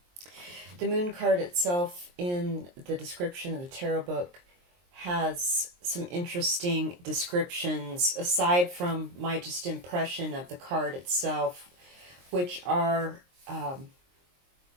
The moon card itself in the description of the tarot book has some interesting descriptions aside from my just impression of the card itself, which are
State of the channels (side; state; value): left; late; 23 ms